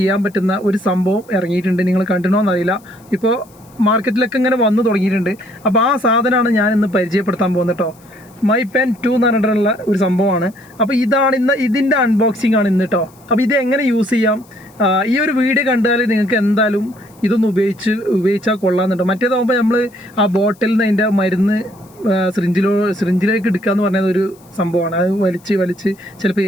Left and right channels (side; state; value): left; noise; hiss, 29 dB below the sound